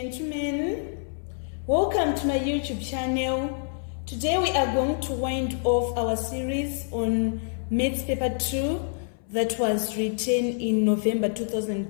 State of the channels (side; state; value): right; silent; 60 dB below the other